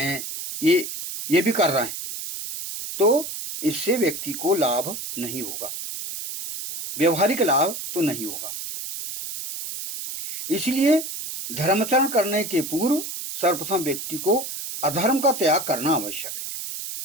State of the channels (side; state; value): right; noise; hiss, 7 dB below the sound